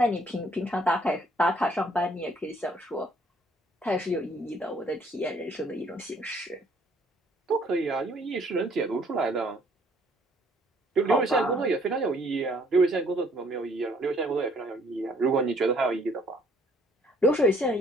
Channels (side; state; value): both; normal; correlation 0.62